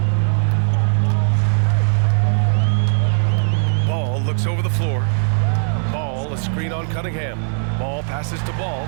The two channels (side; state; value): left; silent; digital silence